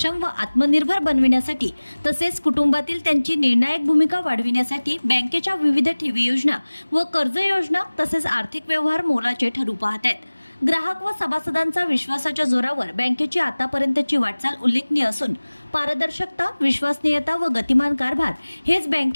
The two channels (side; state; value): both; inverted; correlation -1.00